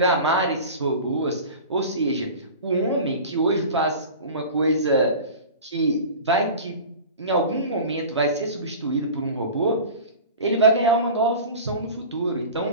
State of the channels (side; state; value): both; inverted; correlation -0.36